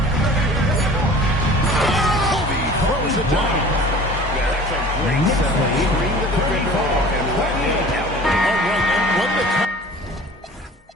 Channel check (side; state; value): both; normal; correlation 0.44